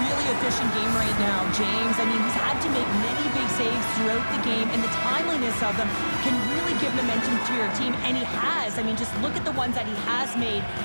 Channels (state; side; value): inverted; both; correlation -1.00